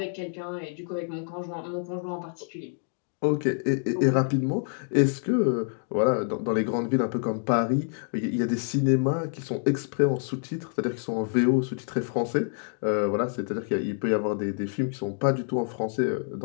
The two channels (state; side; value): silent; right; 60 dB below the other